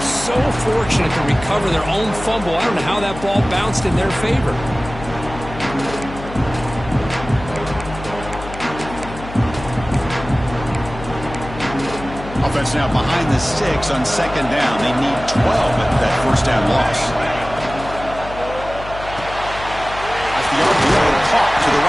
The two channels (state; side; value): noise; left; hum, 12 dB below the sound